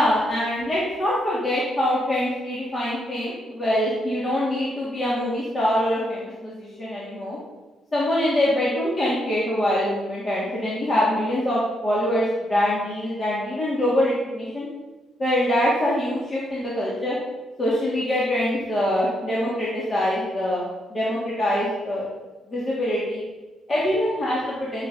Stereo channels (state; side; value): normal; both; correlation 0.77